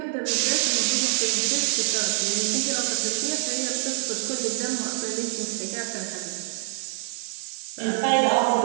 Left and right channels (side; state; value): left; silent; digital silence